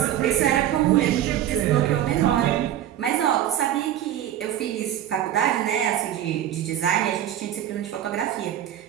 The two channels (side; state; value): left; quieter; 11.4 dB